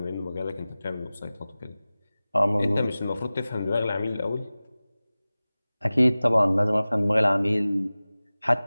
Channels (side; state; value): both; inverted; correlation -0.97